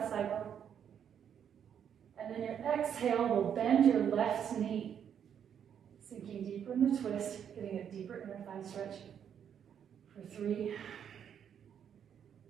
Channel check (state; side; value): quieter; left; 8.5 dB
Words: cycle. And then your exhale will bend your left knee, sinking deeper in the twist, getting a deeper inner thigh stretch. For 3,